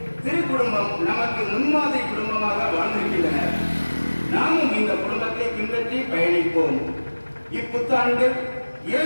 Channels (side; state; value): both; inverted; correlation -1.00